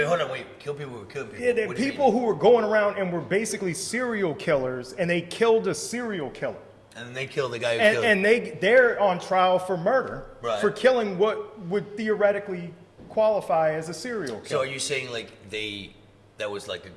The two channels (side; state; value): both; identical; correlation 1.00